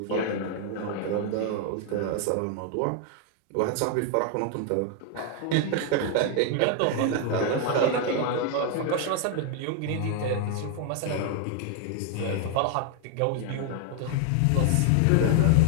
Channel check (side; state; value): both; different; correlation 0.00